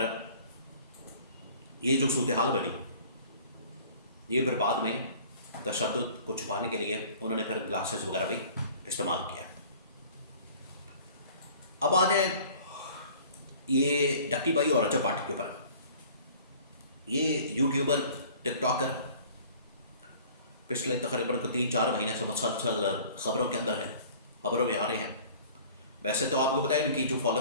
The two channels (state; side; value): inverted; both; correlation -0.49